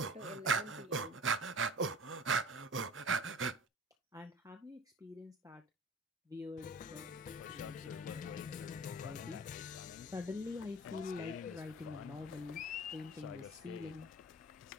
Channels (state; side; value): normal; both; correlation 0.40